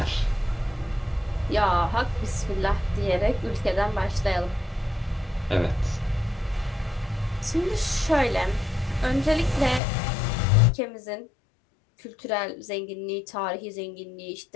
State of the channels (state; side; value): drops out; right; at 9.8 s